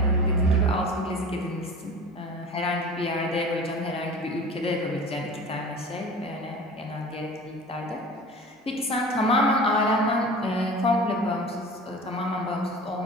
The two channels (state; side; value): normal; both; correlation 0.39